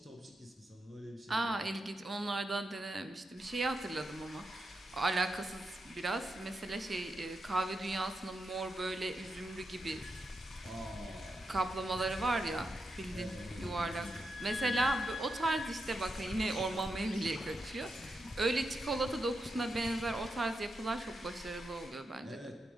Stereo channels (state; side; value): normal; both; correlation 0.86